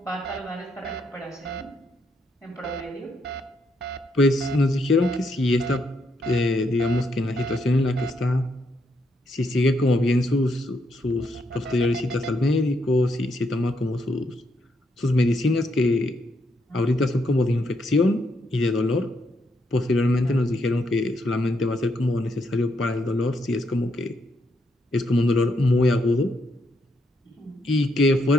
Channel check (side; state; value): both; normal; correlation 0.77